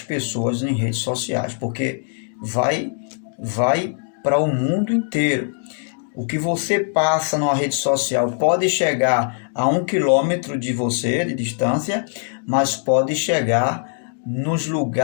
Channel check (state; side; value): silent; right; 58 dB below the other